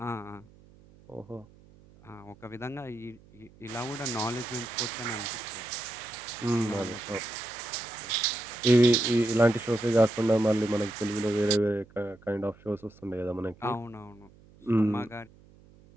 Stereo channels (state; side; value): noise; right; hum, 25 dB below the sound